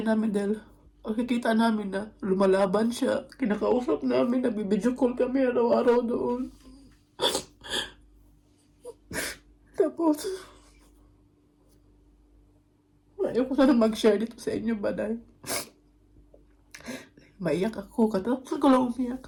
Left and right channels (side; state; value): both; identical; correlation 1.00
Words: namin dahil nakikita namin na lumalaban siya. Kinakausap namin, nabibidyo call kami araw-araw doon. Tapos, ayaw ko sana mag-share dito sa inyo ba dahil maiyak ako. Katapos ko lang